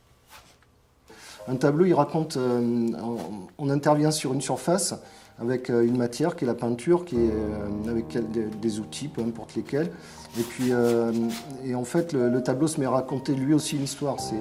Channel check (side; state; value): both; identical; correlation 1.00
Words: Un tableau, il raconte, on intervient sur une surface avec une matière qui est la peinture, avec des outils, peu importe lesquels. Et puis, en fait, le tableau se met à raconter lui aussi une histoire.